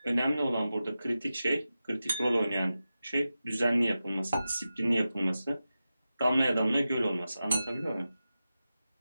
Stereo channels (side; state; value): both; inverted; correlation -0.93